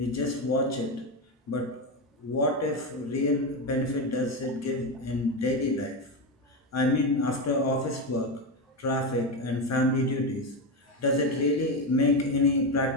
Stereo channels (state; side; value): normal; both; correlation 0.13